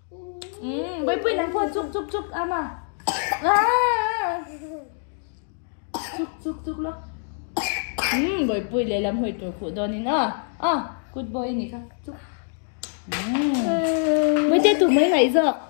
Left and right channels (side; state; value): right; silent; 56 dB below the other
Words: bơi bơi nắng phun chúc ama chúc lo bồi bùi lấy làm hồi tuổi phụ đó nên good boy nè khá chúc mới chơi tụi mấy ngày rồi